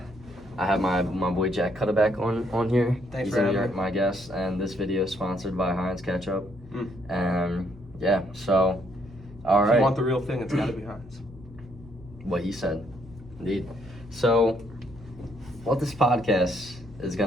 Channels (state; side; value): normal; both; correlation 0.71